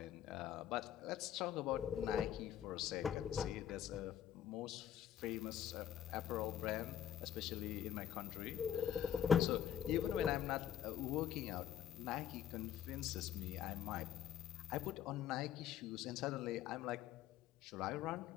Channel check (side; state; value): right; quieter; 10.1 dB